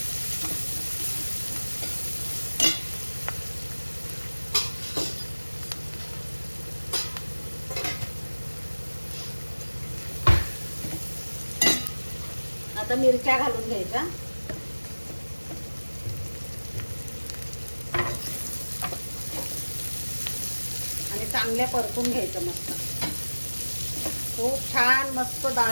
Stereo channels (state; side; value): inverted; both; correlation -1.00